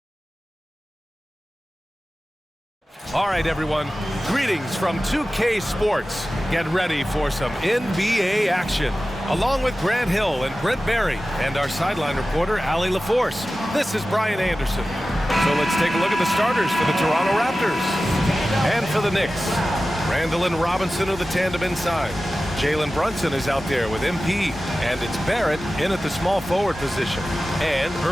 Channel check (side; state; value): both; normal; correlation 0.95